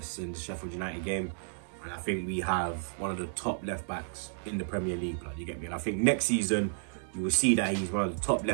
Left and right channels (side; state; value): left; silent; 56 dB below the other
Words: Sheffield United game. And I think we have one of the top left-backs in the Premier League, blood. You get me? And I think next season, you will see that he's one of the top